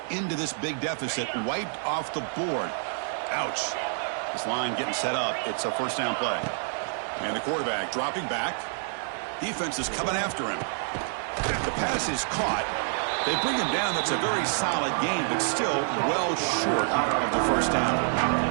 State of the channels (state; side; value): silent; left; digital silence